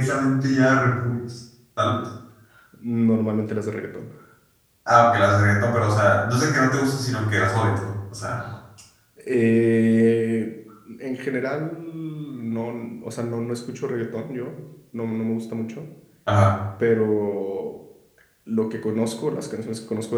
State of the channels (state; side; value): identical; both; correlation 1.00